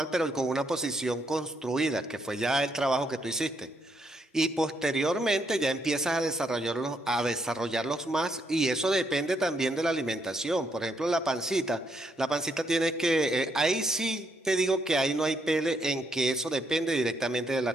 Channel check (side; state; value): both; normal; correlation 0.76